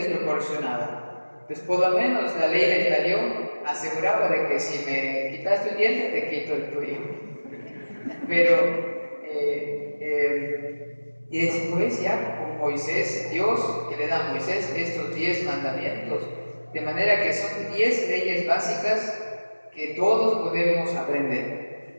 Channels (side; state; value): both; inverted; correlation -1.00